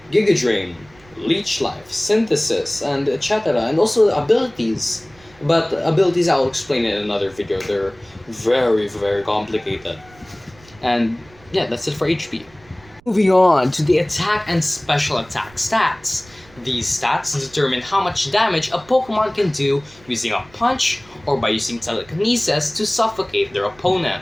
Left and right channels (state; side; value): noise; right; rumble, 27 dB below the sound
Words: Giga Drain, Leech Life, Synthesis, and etc. And also abilities. But abilities I'll explain in another video. They're very, very complicated. And yeah, that's it for HP. Moving on to the attack and special attack stats. These stats determine how much damage a Pokemon can do using a punch or by using telekinesis to suffocate their